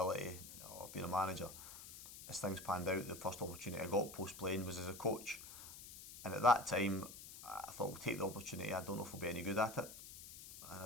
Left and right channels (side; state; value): left; noise; hiss, 13 dB below the sound